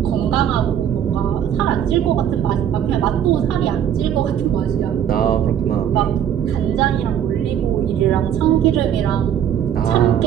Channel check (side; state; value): left; quieter; 9.7 dB